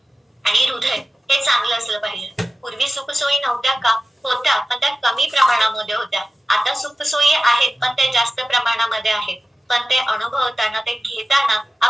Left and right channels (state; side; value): normal; both; correlation 0.95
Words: आणि हृदय हे चांगलं असलं पाहिजे. पूर्वी सुखसोयी नव्हत्या का? होत्या, पण त्या कमी प्रमाणामध्ये होत्या. आता सुखसोयी आहेत पण ते जास्त प्रमाणामध्ये आहेत. पण ते अनुभवताना, ते घेताना